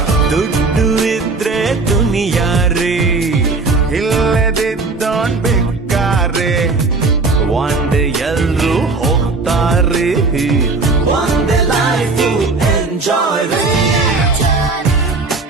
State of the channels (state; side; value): quieter; left; 3.8 dB